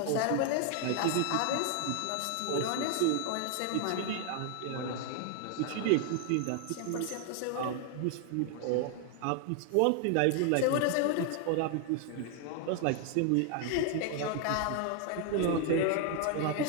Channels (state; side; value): different; both; correlation 0.00